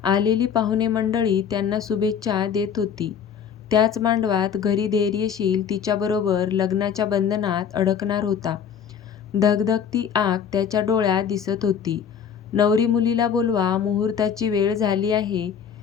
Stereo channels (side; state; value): right; quieter; 7.6 dB